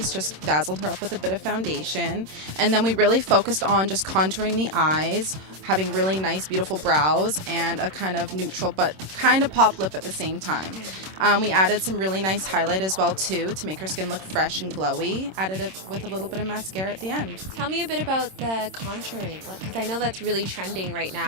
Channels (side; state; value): left; late; 26 ms